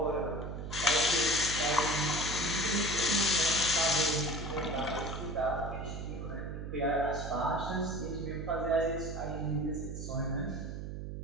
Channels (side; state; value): right; noise; hum, 7 dB below the sound